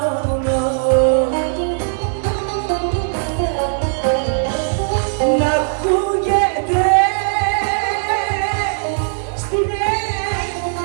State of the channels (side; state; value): left; silent; digital silence